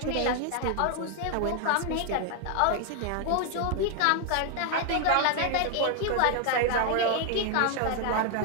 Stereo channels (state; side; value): different; both; correlation 0.00